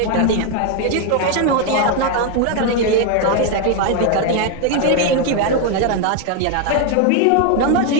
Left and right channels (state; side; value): different; both; correlation 0.01